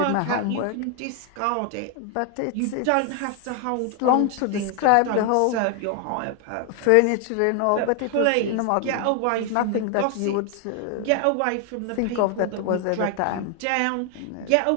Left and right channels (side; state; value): both; different; correlation 0.00